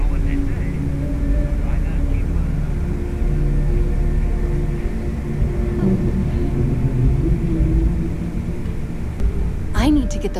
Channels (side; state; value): both; identical; correlation 1.00